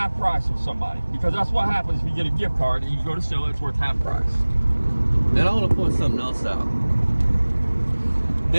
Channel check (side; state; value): both; inverted; correlation -1.00